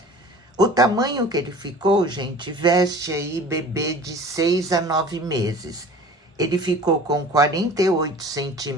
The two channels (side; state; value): both; normal; correlation 0.43